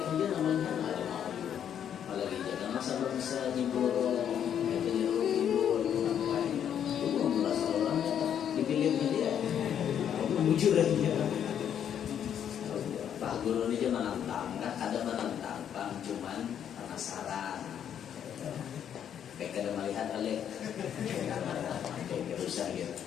dia namanya ada mau apalagi jangan masa belum bisa nyibur itu nyibur apa itu mengulas orangnya dipilihnya dia mujur aja Pak Guru ini dia menantang, ada menantang, cuman penasaran. Kayak kada melihat alih, kayak rusak gitu,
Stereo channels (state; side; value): quieter; right; 9.1 dB